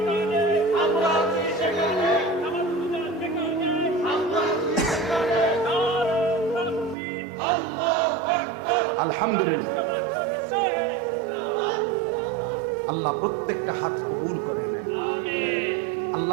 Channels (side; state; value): left; drops out; at 7.0 s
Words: আলহামদুলিল্লাহ, আল্লাহ প্রত্যেকটা হাত কবুল করে নেন।